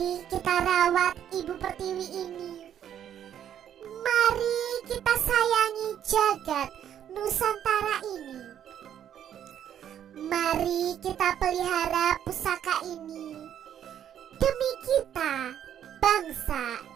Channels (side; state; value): left; quieter; 10.0 dB